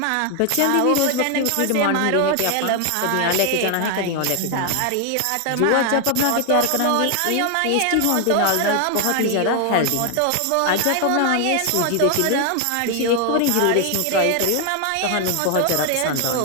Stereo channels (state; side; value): different; both; correlation 0.00